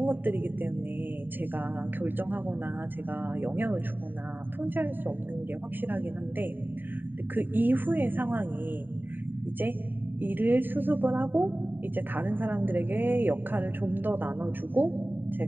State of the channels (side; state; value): left; late; 0.092 ms